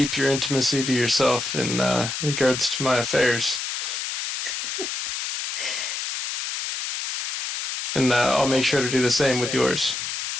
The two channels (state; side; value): noise; left; hiss, 4 dB below the sound